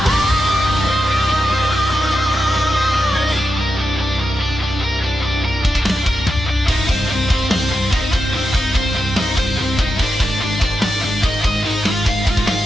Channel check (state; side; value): normal; both; correlation 0.87